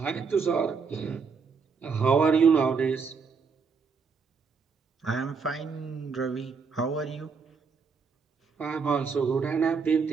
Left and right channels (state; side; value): quieter; left; 5.3 dB